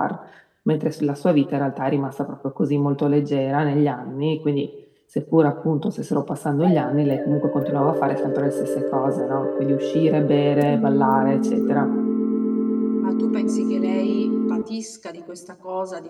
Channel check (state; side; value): identical; both; correlation 1.00